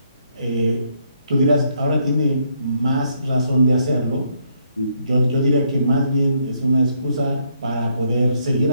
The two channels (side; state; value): both; inverted; correlation -0.73